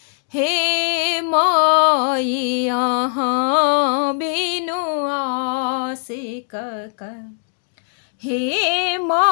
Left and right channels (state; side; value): silent; right; digital silence